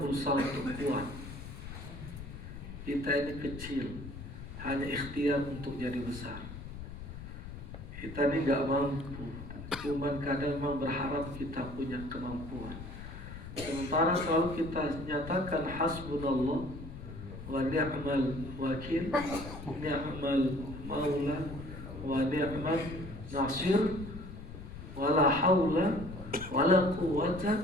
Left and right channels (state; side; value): noise; left; rumble, 11 dB below the sound